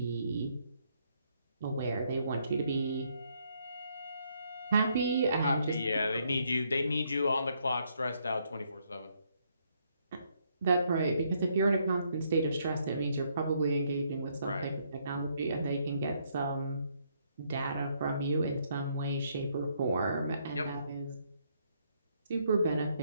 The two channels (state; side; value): inverted; both; correlation -0.72